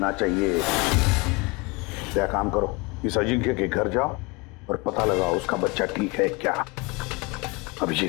चाहिए। क्या काम करो, इस अजिंक्य के घर जाओ और पता लगाओ उसका बच्चा ठीक है क्या।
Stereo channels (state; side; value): quieter; right; 26.6 dB